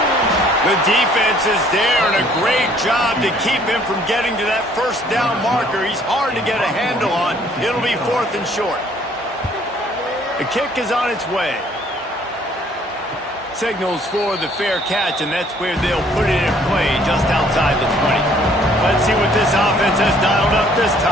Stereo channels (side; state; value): both; normal; correlation 0.60